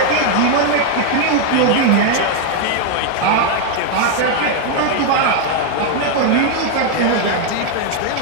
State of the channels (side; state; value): both; different; correlation 0.01